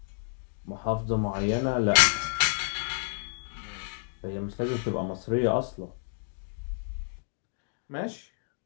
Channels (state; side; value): silent; right; digital silence